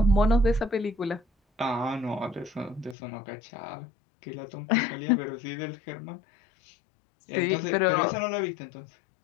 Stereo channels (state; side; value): drops out; right; at 3.0 s